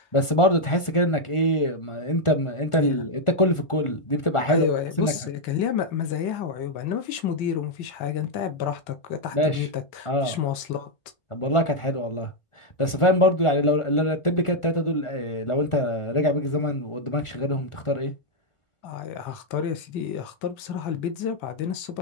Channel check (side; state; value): right; late; 1.4 ms